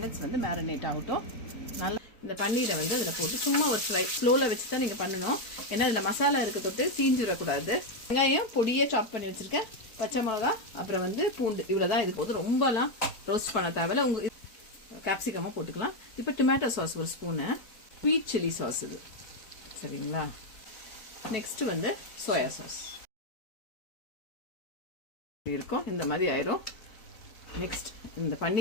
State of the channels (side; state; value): right; late; 4.6 ms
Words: வந்து மேரினேட் ஆகட்டும். நல்லா இந்த பன்னீரை வந்து அதில் போட்டு சும்மா ஒரு ஃப்ரை ஸ்லோவில் வச்சு தான் நீங்கள் பண்ணணும். ஏன்னா இதில் மசாலா இருக்க தொட்டு தீஞ்சிடக்கூடாது. வெங்காயம் பொடியே சாப் பண்ணி வச்சுருக்கேன், பச்சை மிளகா, அப்புறம் வந்து பூண்டு, இவ்வளோ தான். இது போது ரொம்பலாம் ரோஸ்ட் பண்ண தேவையில்ல. உங்கள் கேப்சிகமாக போட்டுக்கலாம். இப்போ டொமேட்டோ சாஸ் ஒரு ஸ்பூனு, ஸ்வீட் சில்லி சாஸ் இது, சரிங்களா? நெக்ஸ்ட் வந்து சோயா சாஸ் இருக்கும். இந்த மாதிரி ஆயிரும். நெக்ஸ்ட் இந்த